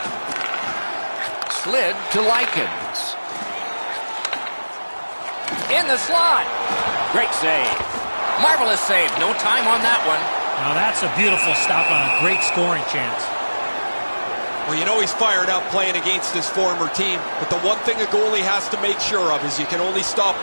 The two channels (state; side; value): inverted; both; correlation -1.00